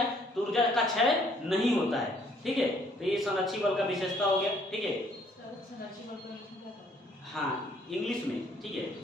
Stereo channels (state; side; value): normal; both; correlation 0.63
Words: तो ऊर्जा का क्षय नहीं होता है। ठीक है, तो ये संरक्षी बल का विशेषता हो गया। ठीक है, हाँ, इंग्लिश में। ठीक है,